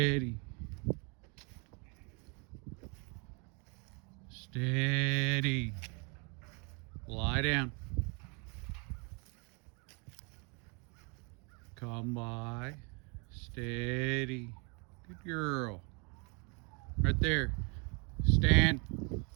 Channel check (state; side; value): quieter; left; 33.7 dB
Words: Steady. Lie down. Come by. Steady. Good girl. Right there. Stand.